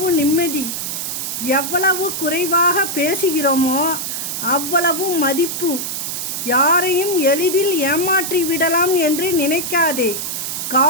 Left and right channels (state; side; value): noise; right; hiss, 4 dB below the sound